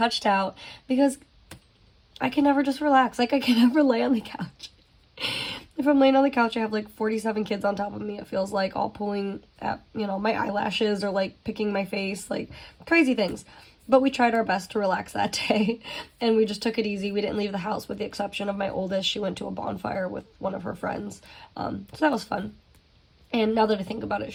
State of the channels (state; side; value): identical; both; correlation 1.00